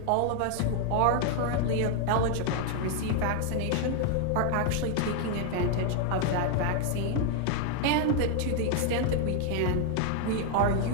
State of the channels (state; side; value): different; both; correlation 0.00